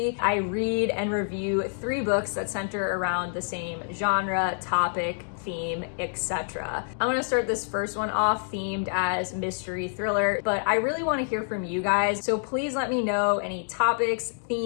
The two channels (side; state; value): right; silent; digital silence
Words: I read and review 3 books that center around the same genre, topic, theme, etc. I'm gonna start this first one off themed as mystery thriller, but I really want to hear from you guys, so please let me know any topics,